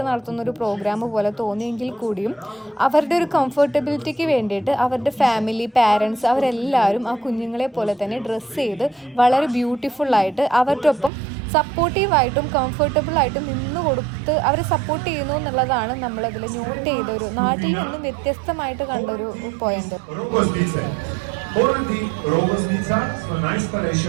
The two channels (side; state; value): left; drops out; at 11.1 s